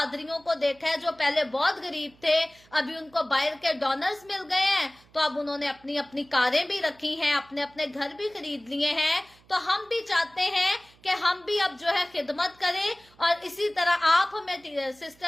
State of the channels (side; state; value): right; noise; hum, 29 dB below the sound